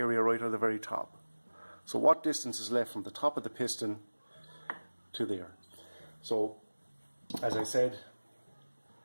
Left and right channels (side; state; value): both; inverted; correlation -1.00